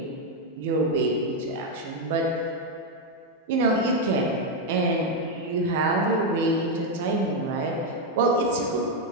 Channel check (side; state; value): both; normal; correlation 0.03